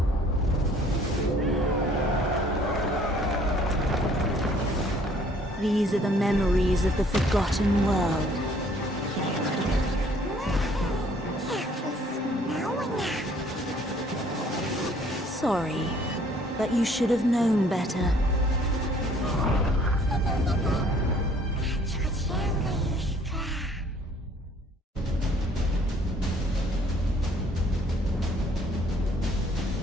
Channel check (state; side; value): normal; both; correlation 0.59